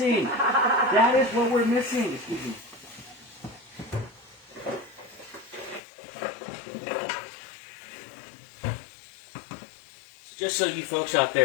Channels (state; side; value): drops out; right; at 5.8 s